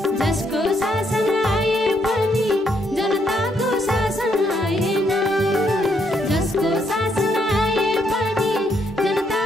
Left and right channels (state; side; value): normal; both; correlation 0.75